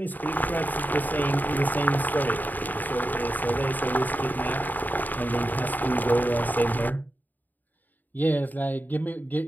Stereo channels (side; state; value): right; late; 0.086 ms